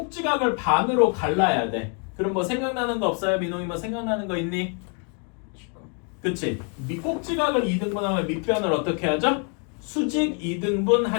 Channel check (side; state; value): right; quieter; 38.7 dB